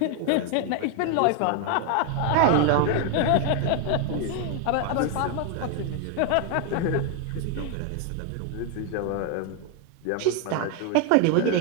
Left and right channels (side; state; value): both; different; correlation 0.00